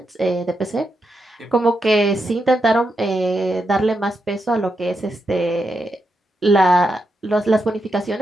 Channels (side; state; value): both; normal; correlation 0.84